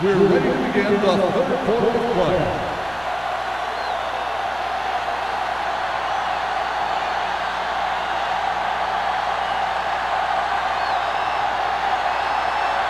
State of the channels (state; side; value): identical; both; correlation 1.00